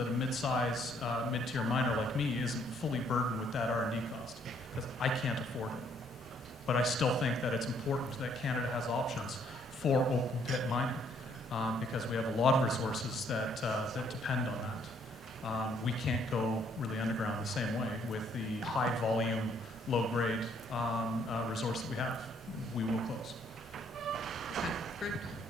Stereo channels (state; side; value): normal; both; correlation 0.66